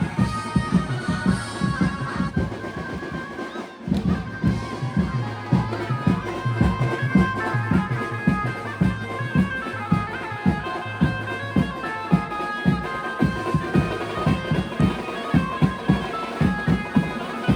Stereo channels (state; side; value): identical; both; correlation 1.00